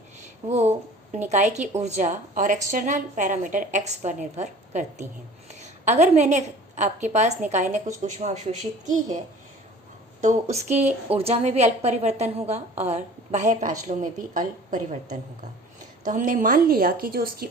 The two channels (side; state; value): both; normal; correlation 0.46